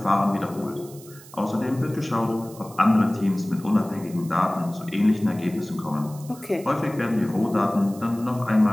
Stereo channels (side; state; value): right; noise; hiss, 20 dB below the sound